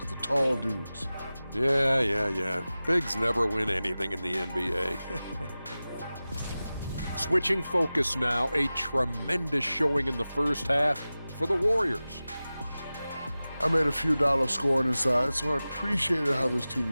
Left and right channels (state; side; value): inverted; both; correlation -0.96